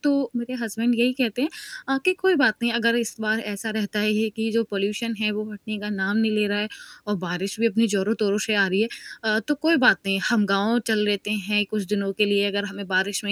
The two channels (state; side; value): identical; both; correlation 1.00